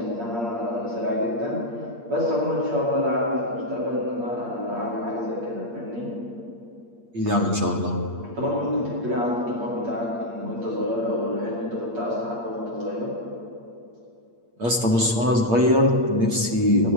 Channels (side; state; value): left; late; 8.6 ms